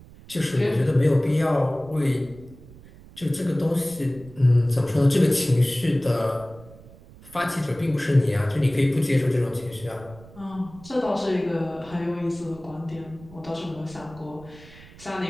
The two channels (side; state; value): right; noise; rumble, 21 dB below the sound